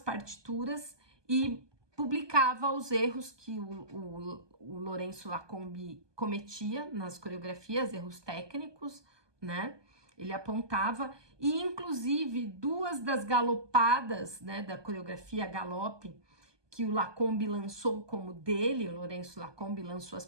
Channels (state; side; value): late; left; 1.2 ms